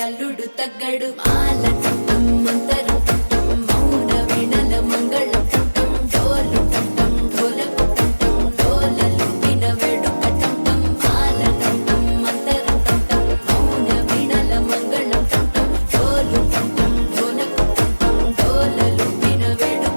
అల్లుడు తగ్గడు మాల టం మంతరం టం మౌన వీణల మంగళం టం డోలు టం ఢోలకు టం డోలలు విన వేడుక టం మాల టం మంతరం టం మౌన వీణల మంగళం టం డోలు టం ఢోలకు టం డోలలు విన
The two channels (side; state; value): both; inverted; correlation -1.00